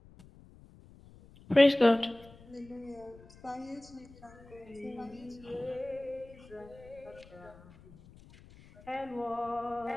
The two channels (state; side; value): noise; left; rumble, 22 dB below the sound